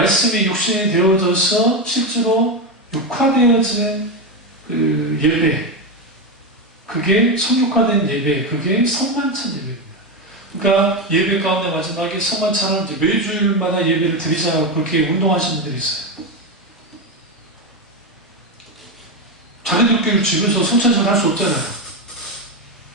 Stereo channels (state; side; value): normal; both; correlation 0.12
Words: 육신이 되어져서 실제로 육화되어진 예배, 그게 성육화된 예배, 그게 성만찬 예배입니다. 그러니까 예배 가운데 마지막에 성만찬을 이제 매주일마다 예배를 드리자고 그렇게 운동하시는 분들이 있어요. 자기들끼리 집에서 성찬식을 할 수 없잖아요.